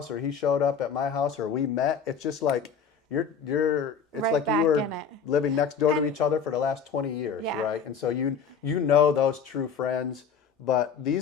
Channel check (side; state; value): right; quieter; 6.4 dB